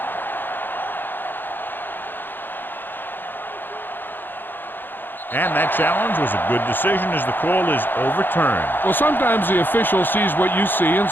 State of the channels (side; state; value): right; late; 0.095 ms